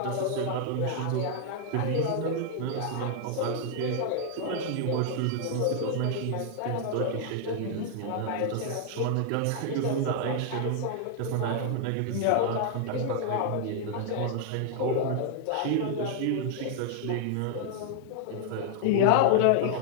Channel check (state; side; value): different; both; correlation 0.00